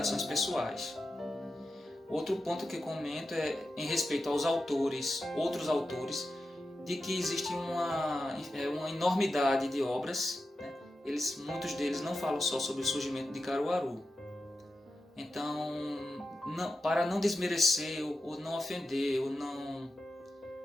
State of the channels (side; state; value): both; normal; correlation 0.91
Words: pessoais. Outro ponto que comento é em respeito aos outros autores, de que existe uma enormidade de obras, né? Muitos deles não falam só sobre o surgimento de Caruaru. Então, para não desmerecer ou não ofender ou não